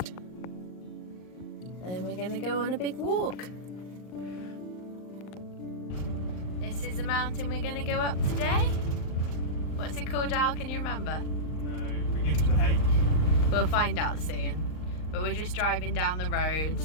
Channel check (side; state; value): right; late; 38 ms